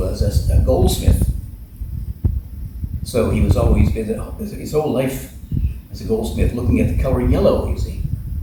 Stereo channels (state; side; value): identical; both; correlation 1.00